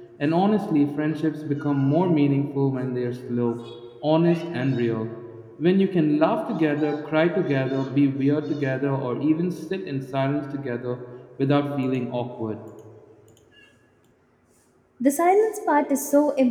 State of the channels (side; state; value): both; identical; correlation 1.00